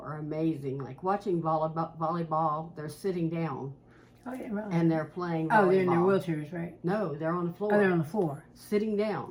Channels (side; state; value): both; identical; correlation 1.00